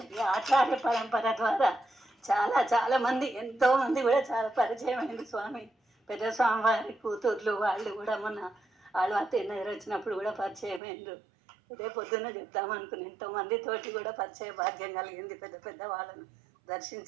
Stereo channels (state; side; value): drops out; left; at 10.8 s